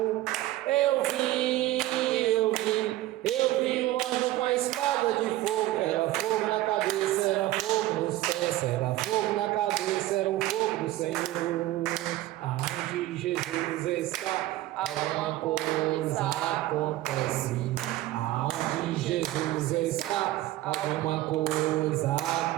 Eu vi um anjo com a espada de fogo. Era fogo na cabeça, era fogo nos pés, era fogo na cabeça, era o fogo do Senhor. Aonde Jesus está, alguma coisa acontece. Aonde Jesus está, alguma coisa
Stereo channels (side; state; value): left; quieter; 15.8 dB